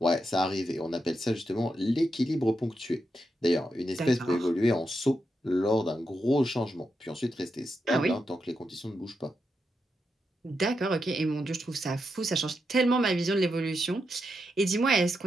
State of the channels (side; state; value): both; normal; correlation 0.85